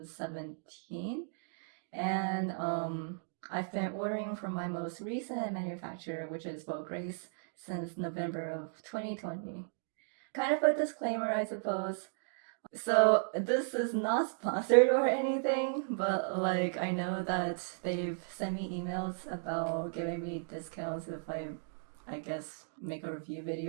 And I've been ordering from my most recent manufacturer, which is Vograce, since November of 2020. Kind of a disclaimer, I suppose. So this is not sponsored or anything, but like I know that they've sent me emails about giving me discounts if I guess, make a review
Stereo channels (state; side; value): silent; left; digital silence